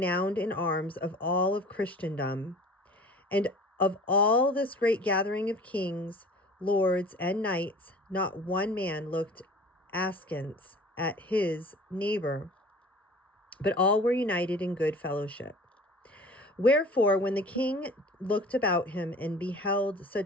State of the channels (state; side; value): normal; both; correlation 0.44